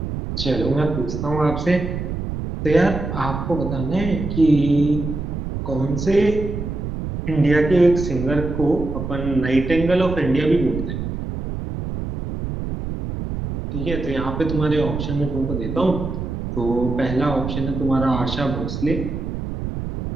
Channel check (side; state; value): right; noise; rumble, 5 dB below the sound